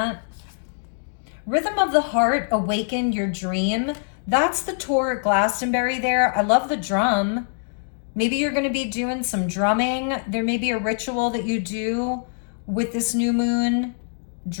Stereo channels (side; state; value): right; silent; digital silence